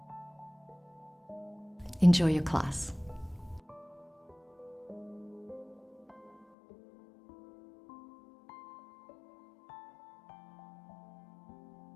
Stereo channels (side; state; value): right; drops out; at 6.5 s